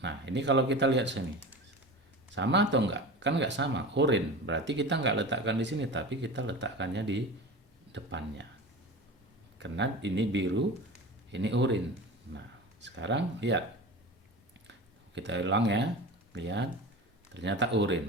Nah, ini kalau kita lihat sini, sama atau enggak? Kan nggak sama, oranye. Berarti kita nggak letakkan di sini, tapi kita letakkannya di depannya. Karena ini biru, ini oranye. Nah, sekarang lihat, kita ulang ya, lihat, ternyata oranye.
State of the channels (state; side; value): normal; both; correlation 0.32